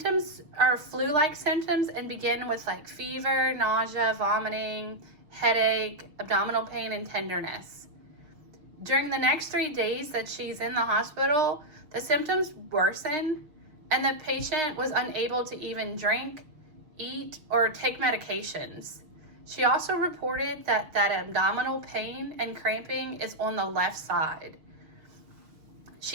are flu-like symptoms and begin with like fever, nausea, vomiting, headache, abdominal pain, and tenderness. During the next 3 days that she's in the hospital, the symptoms worsen and the patient was unable to even drink, eat, or take medications. She also reported that abdominal pain and cramping is on the left side.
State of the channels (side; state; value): left; late; 6.4 ms